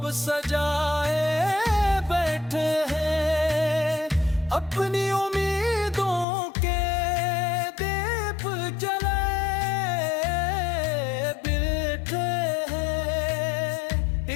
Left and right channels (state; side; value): drops out; right; at 6.2 s